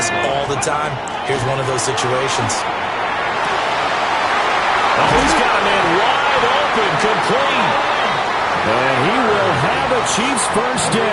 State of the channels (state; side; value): identical; both; correlation 1.00